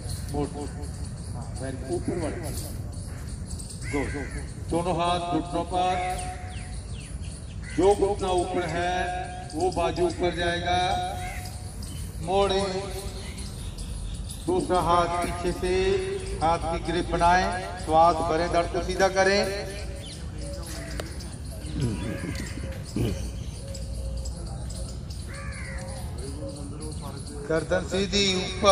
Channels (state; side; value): identical; both; correlation 1.00